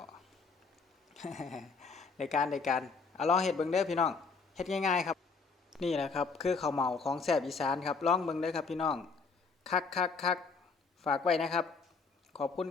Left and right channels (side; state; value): right; quieter; 4.7 dB